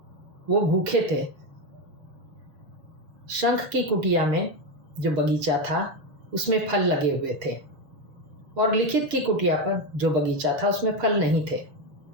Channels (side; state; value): left; late; 6.7 ms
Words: वो भूखे थे। शंख की कुटिया में जो बगीचा था उसमें फल लगे हुए थे और लिखित की कुटिया पर जो बगीचा था उसमें फल नहीं थे।